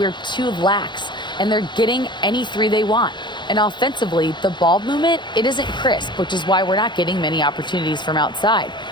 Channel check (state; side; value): late; right; 0.22 ms